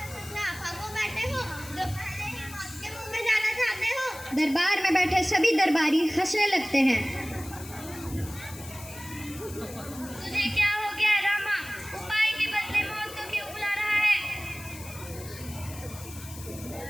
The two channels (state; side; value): noise; left; hiss, 15 dB below the sound